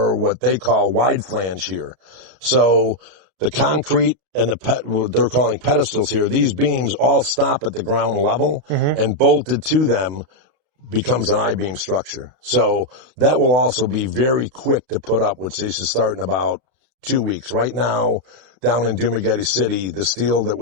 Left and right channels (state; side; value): late; left; 34 ms